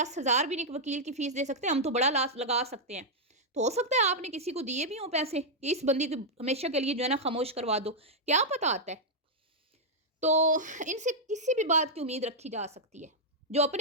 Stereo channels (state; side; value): normal; both; correlation -0.05